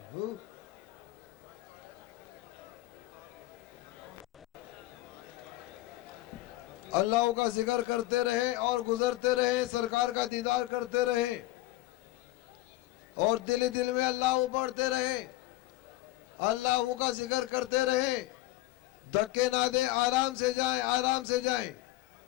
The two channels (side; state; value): right; quieter; 17.7 dB